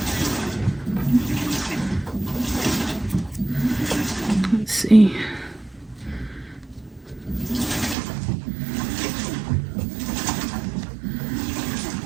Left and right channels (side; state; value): left; drops out; at 8.0 s